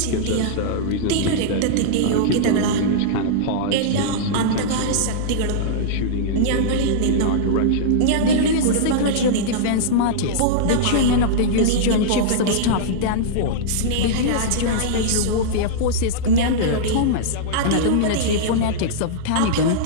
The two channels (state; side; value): different; both; correlation -0.02